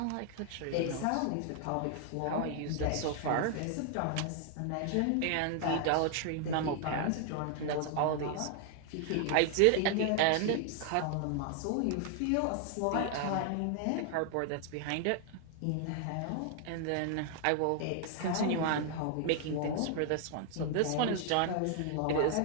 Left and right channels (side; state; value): both; different; correlation 0.00